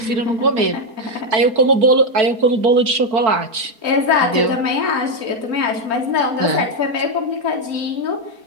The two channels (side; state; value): left; late; 4.6 ms